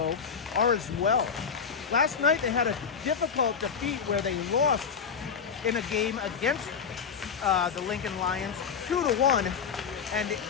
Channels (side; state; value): right; quieter; 6.5 dB